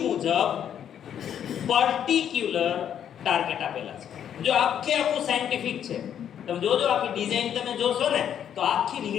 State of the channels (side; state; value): right; quieter; 9.3 dB